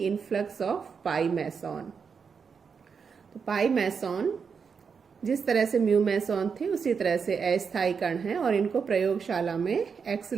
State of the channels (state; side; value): quieter; left; 6.0 dB